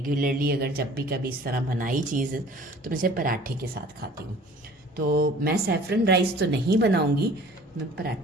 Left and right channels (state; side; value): normal; both; correlation 0.49